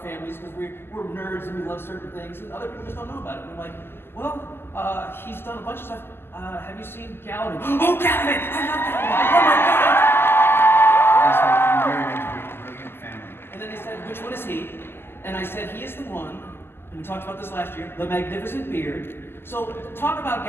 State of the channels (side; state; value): right; late; 0.11 ms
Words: because we're nerds and we love certain things, and other people just don't know about it. And we're like, well, he's done a bunch of stuff. Have you seen Galvin? Oh, Galvin! I love Galvin! Oh my God! Yes, I'm very into a brilliant family. And then they said, which one is he? And I said, he is the one, and we talked about this last year, the magnificent beard. So talk about